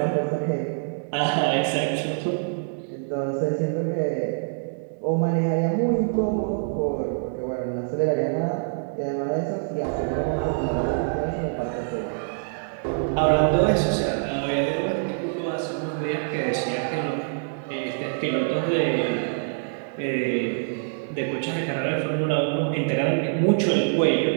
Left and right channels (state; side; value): silent; left; digital silence